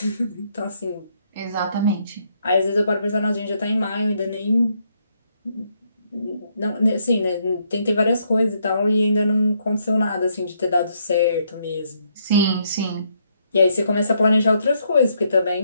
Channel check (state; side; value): inverted; both; correlation -0.73